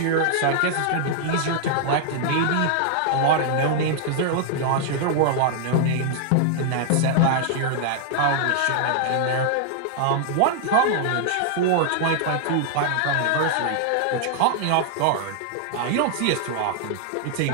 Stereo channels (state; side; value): different; both; correlation 0.00